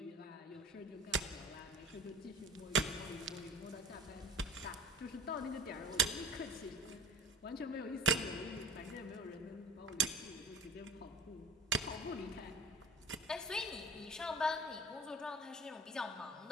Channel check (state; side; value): normal; both; correlation 0.38